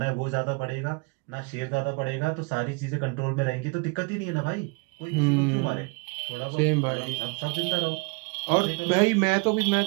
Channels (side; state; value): left; quieter; 31.1 dB